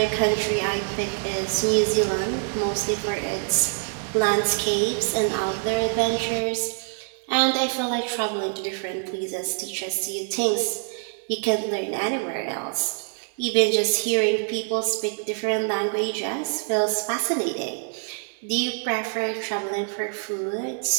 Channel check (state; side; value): silent; left; 62 dB below the other